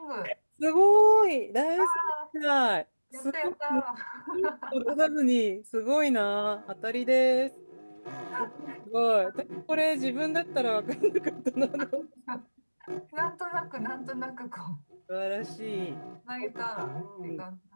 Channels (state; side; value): inverted; both; correlation -1.00